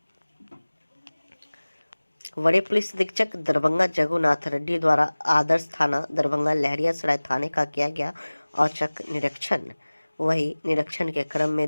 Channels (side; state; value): both; inverted; correlation -1.00